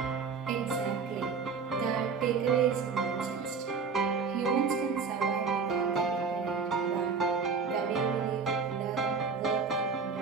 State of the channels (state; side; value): quieter; left; 5.3 dB